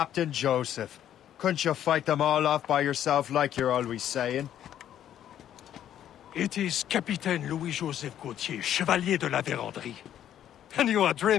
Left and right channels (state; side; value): quieter; right; 10.8 dB